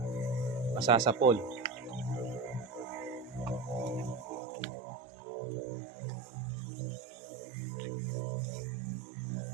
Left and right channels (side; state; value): left; drops out; at 4.4 s